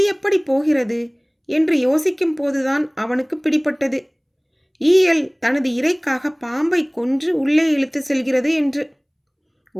எப்படி போகிறது என்று யோசிக்கும் போதுதான் அவனுக்கு பிடிபட்டது. ஈயல் தனது இரைக்காக பாம்பை கொன்று உள்ளே இழுத்து செல்கிறது என்று.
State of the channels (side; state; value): both; identical; correlation 1.00